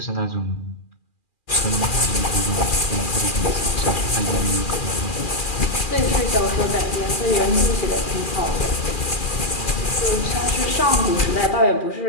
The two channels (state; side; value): late; right; 2.4 ms